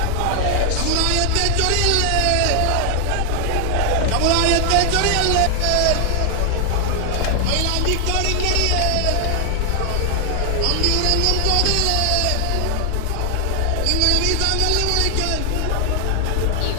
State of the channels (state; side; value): different; both; correlation 0.00